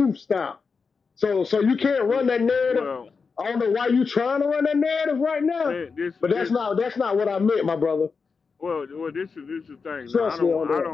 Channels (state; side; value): quieter; right; 5.1 dB